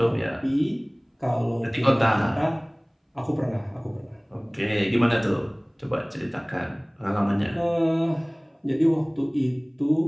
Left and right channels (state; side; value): identical; both; correlation 1.00